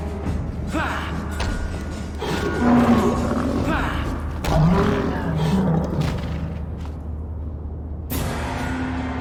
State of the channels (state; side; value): identical; both; correlation 1.00